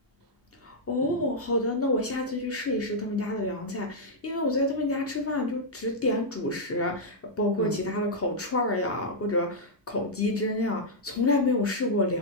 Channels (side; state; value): both; normal; correlation -0.06